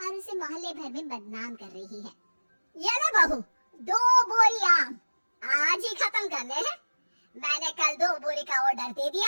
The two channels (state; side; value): inverted; both; correlation -1.00